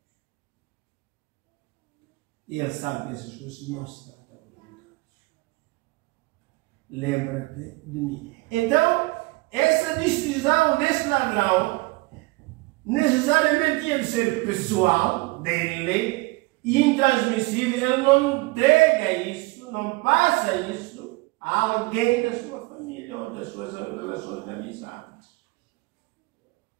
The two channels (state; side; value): quieter; left; 24.3 dB